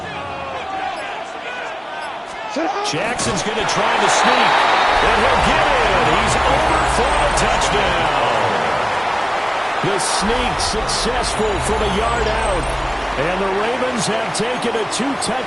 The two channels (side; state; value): both; identical; correlation 1.00